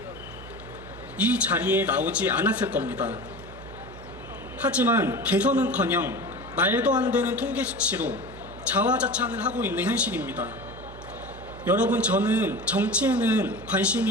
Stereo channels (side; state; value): right; noise; hum, 15 dB below the sound